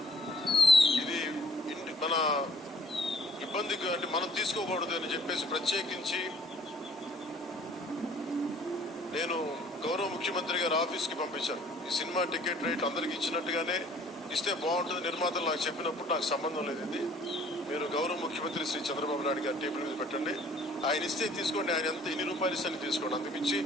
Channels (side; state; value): both; normal; correlation 0.57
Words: ఇది మన ఇబ్బందికి అంటే మనం తీసుకోకూడదు అని చెప్పేసి ప్రత్యేకించి నేను గౌరవ ముఖ్యమంత్రి గారి ఆఫీస్కి పంపించాను. ఈ సినిమా టికెట్ రేట్ అందరికి ఇచ్చినట్టుగానే ఇస్తే బాగుంటుంది, నిర్మాతలు నాకు చెప్పినప్పుడు నాకు సంబంధం లేదు, ఇది మీరు గౌరవ ముఖ్యమంత్రి శ్రీ చంద్రబాబు నాయుడు గారి టేబుల్ మీద పెట్టండి, ఆయన ఇస్తే తీసుకోండి, ఆయన ఎంత ఇన్ని రూపాయలు ఇస్తే తీసుకోండి, అందుమించి